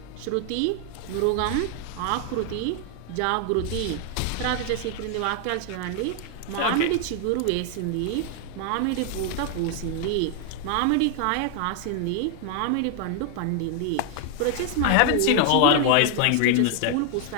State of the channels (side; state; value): both; different; correlation 0.00